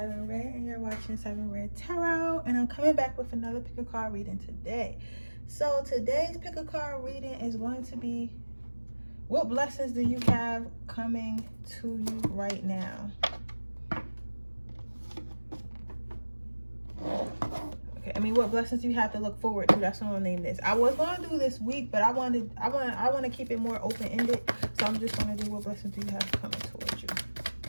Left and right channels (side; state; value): both; inverted; correlation -1.00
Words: Redd and you're watching Siren Redd Tarot, and I'm coming back with another pick a card reading today. So today's pick a card reading is going to be, what blessings do you have coming to you right now? Okay, what blessings do you have to look forward to? That's what I'll name this. I was going to do this week, but I want to keep it more open-ended, so I'm just going to do what blessings do you have coming towards you.